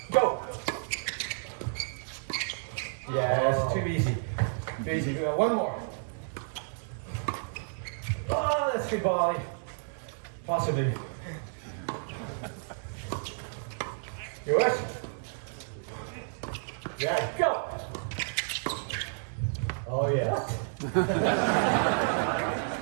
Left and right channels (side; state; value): left; silent; digital silence